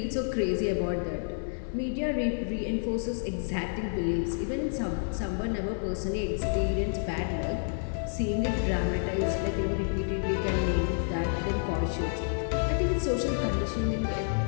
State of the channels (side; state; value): right; silent; 58 dB below the other